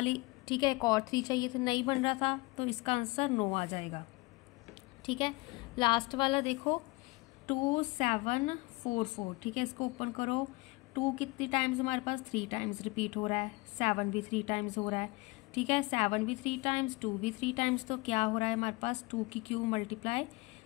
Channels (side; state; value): right; quieter; 24.0 dB